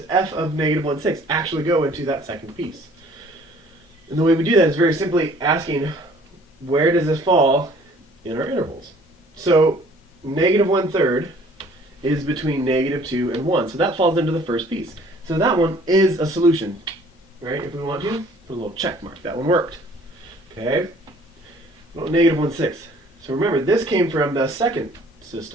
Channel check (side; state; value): both; normal; correlation 0.55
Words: f of -1/6 actually go into that second piece? And the way we do that is very simply asking, where does this fall in our intervals? So -1/3 is between -2 and 1, so that falls into the first piece. So that one is a solution, right? If we want to, put a little check mark. That one worked. Okay? Well, -1/6. So remember, this came from the second